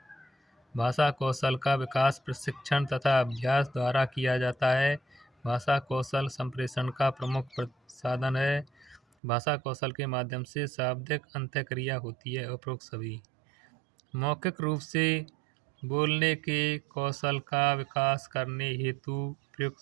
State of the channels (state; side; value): drops out; left; at 9.0 s